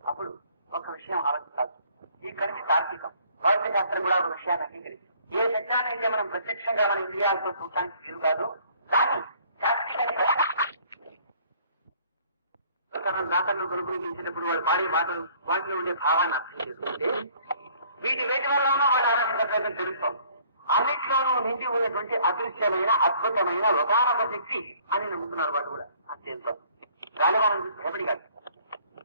అప్పుడు ఒక విషయం ఆలోచించాల్సి, ఇక్కడి నుంచి తార్కికం భౌతిక శాస్త్రం కూడా ఒక విషయాన్ని అంగీకరిస్తుంది. ఏ సత్యాన్ని అయితే మనం ప్రత్యక్షంగా మన ఇంద్రియాలతో చూడటానికి వీలు కాదు, దాన్ని శాస్త్రీయ దాతలు కొనుగోలు వాడు పాడే మాటలు వాటిలో ఉండే భావాన్ని అర్థం చేసుకుంటే వీటి వల్ల వాడు ఆరాధించడం తెలుస్తాం. అన్నిట్లోనూ నిండి ఉన్నటువంటి అదృశ్యమైన అద్భుతమైన ఒకానొక శక్తి అని నమ్ముతున్నారు వాడు కూడా. అంతేంత గాలివానం చూసి భయపడి కాదు,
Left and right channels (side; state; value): both; inverted; correlation -0.58